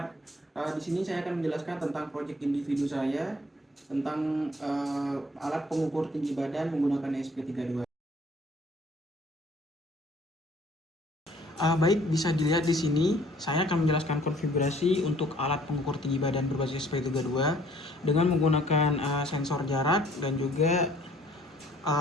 Di sini saya akan menjelaskan tentang proyek individu saya tentang alat pengukur tinggi badan menggunakan ESP32. Baik, bisa dilihat di sini saya akan menjelaskan konfigurasi untuk alat pengukur tinggi badan berbasis ESP32 dengan menggunakan sensor jarak dan juga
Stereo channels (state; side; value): normal; both; correlation 0.58